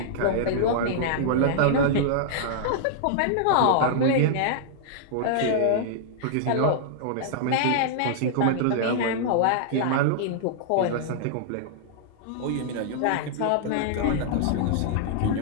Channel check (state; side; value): different; both; correlation -0.01